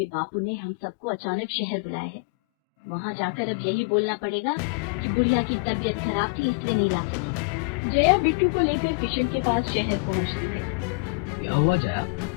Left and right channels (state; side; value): quieter; right; 31.5 dB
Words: बापू ने हम सबको अचानक शहर बुलाया है। वहाँ जाकर अब यही बोलना पड़ेगा कि बुढ़िया की तबीयत खराब थी इसलिए नहीं ला सकी। जया बिट्टू को लेकर किशन के पास शहर पहुँचती है। क्या हुआ जया,